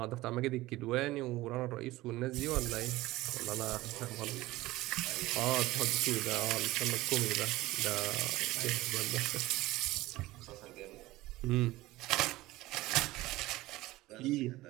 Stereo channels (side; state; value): left; quieter; 18.1 dB